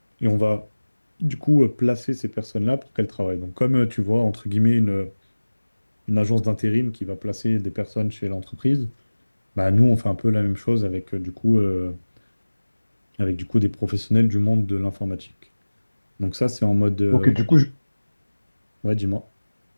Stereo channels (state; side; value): inverted; both; correlation -1.00